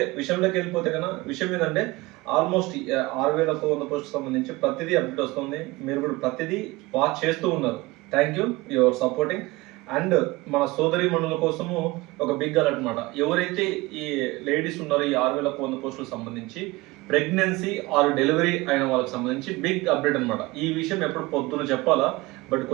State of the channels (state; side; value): quieter; left; 21.5 dB